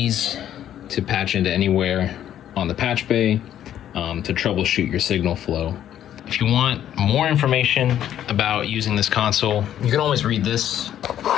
to patch into anywhere on the patch bay to troubleshoot your signal flow. If you want more information about using this console, you can always read this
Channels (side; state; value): right; quieter; 10.9 dB